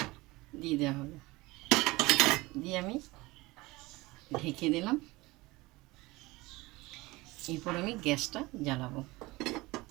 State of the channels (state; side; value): quieter; left; 21.4 dB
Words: দিয়ে দেওয়া হলো। দিয়ে আমি ঢেকে দিলাম। এরপর আমি গ্যাসটা জ্বালাবো।